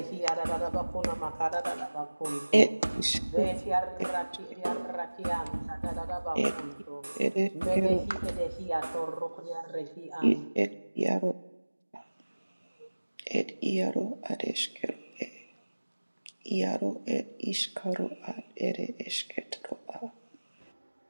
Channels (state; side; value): inverted; both; correlation -1.00